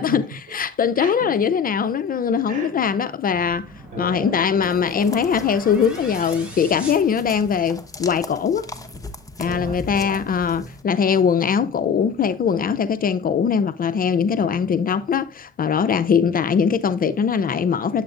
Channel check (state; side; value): quieter; right; 6.4 dB